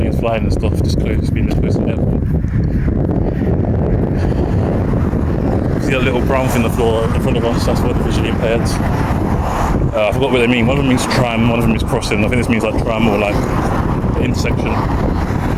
flying and stuff, just close, being this close to the airport. See that little brown thing on the floor in front of us, that's for the visually impaired. I forgot what they mean. One of them means tram, one of them means crossing. I think this means like tram or like the intersection.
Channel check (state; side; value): identical; both; correlation 1.00